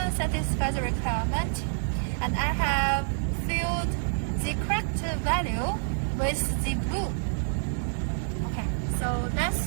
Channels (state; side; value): silent; left; digital silence